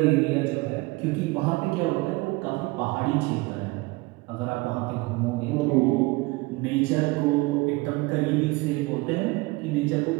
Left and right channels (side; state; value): left; quieter; 22.9 dB